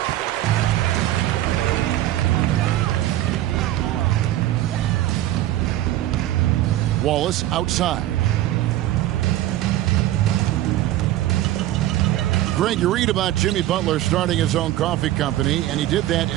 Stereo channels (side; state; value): left; quieter; 14.3 dB